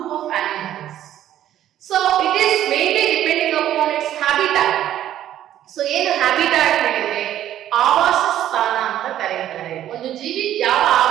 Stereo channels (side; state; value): left; quieter; 11.9 dB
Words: of animals. So it is mainly depending upon its habitat. So ಏನು habitat ಹೇಳಿದ್ರೆ ಆವಾಸ ಸ್ಥಾನ ಅಂತ ಕರೆಯುತ್ತಾರೆ. ಒಂದು ಜೀವಿ ಯಾವ